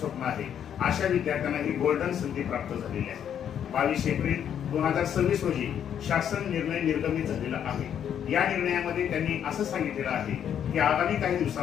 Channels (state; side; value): quieter; right; 9.1 dB